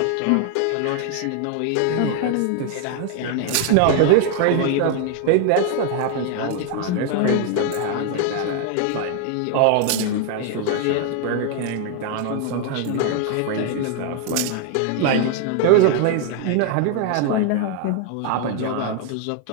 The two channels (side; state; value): both; different; correlation 0.00